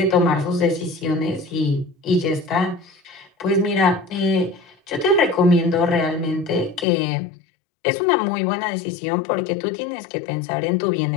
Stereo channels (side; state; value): right; drops out; at 6.9 s